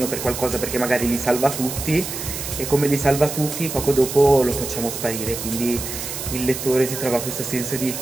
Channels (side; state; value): right; noise; hiss, 6 dB below the sound